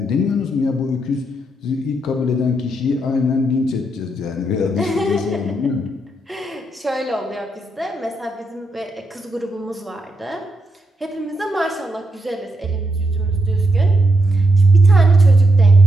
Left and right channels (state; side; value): normal; both; correlation 0.81